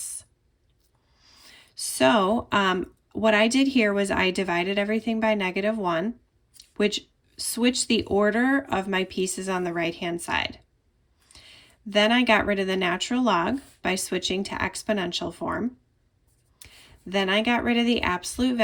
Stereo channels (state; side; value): identical; both; correlation 1.00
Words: So what I did here was I divided everything by -1, which switched the order of my pieces on the right-hand side. Then I got rid of the natural log by switching to exponential form. Then I got rid of the absolute